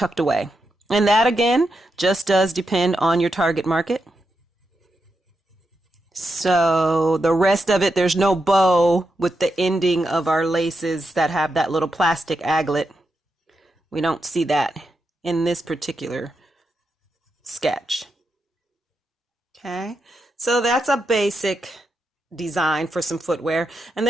away. And that again, just does depend on your target market. So the rest of it, there's no bow with the ending of our laces that have that little plastic aglet. We don't see that in this particular sketch. Okay, so that's a basic design for some footwear. And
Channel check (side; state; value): both; normal; correlation 0.86